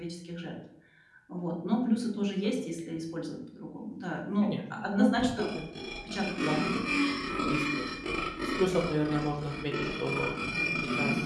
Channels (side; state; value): both; identical; correlation 1.00